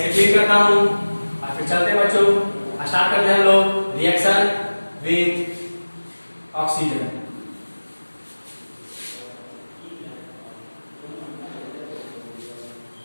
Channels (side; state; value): both; inverted; correlation -1.00